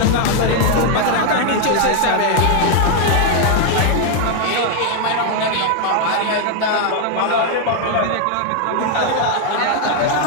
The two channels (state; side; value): different; both; correlation 0.00